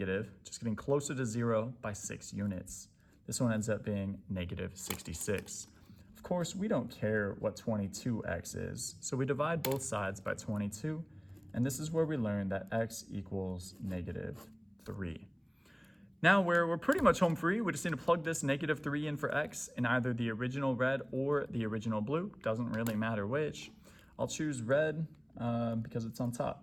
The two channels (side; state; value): both; identical; correlation 1.00